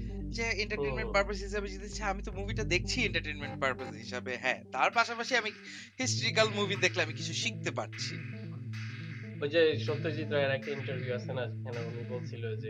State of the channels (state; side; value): identical; both; correlation 1.00